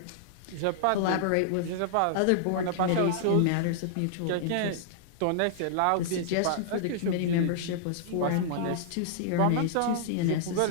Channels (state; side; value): different; both; correlation -0.01